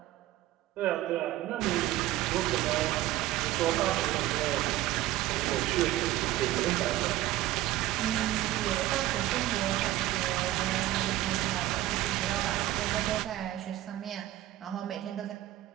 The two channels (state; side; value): quieter; left; 15.2 dB